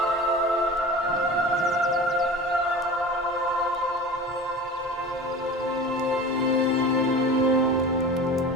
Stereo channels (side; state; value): both; normal; correlation 0.35